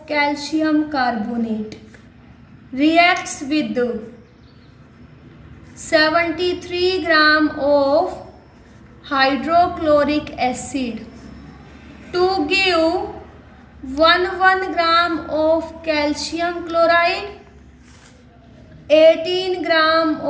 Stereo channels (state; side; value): identical; both; correlation 1.00